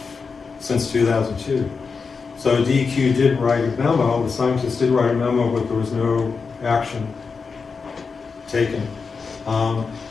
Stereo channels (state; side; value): quieter; right; 5.0 dB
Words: since 2002. So DEQ did write a memo, the scientists did write a memo, but there was no action taken.